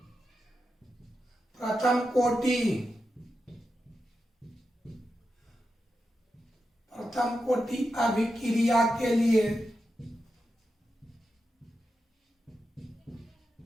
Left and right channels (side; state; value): both; normal; correlation 0.89